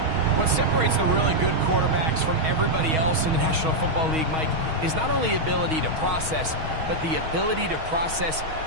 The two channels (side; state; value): left; late; 6.3 ms